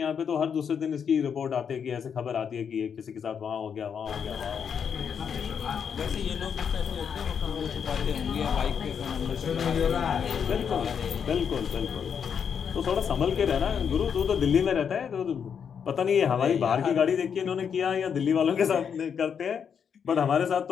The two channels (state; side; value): quieter; right; 7.3 dB